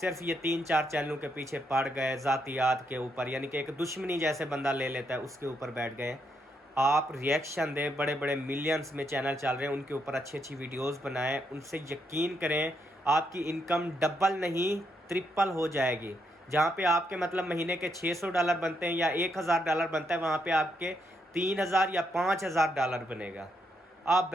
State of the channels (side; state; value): both; normal; correlation 0.79